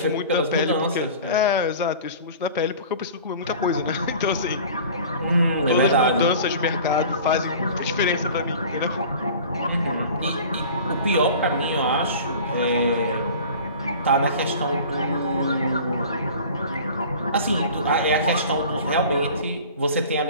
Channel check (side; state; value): both; inverted; correlation -0.42